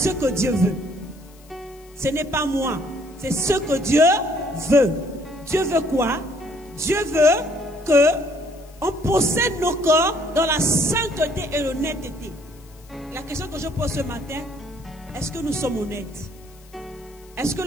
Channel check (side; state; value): left; noise; hiss, 27 dB below the sound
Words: que Dieu veut. Ce n'est pas moi. C'est ce que Dieu veut. Dieu veut quoi? Dieu veut que on possède nos corps dans la sainteté et l'honnêteté. La question que je pose ce matin, est-ce que nous sommes honnêtes? Est-ce que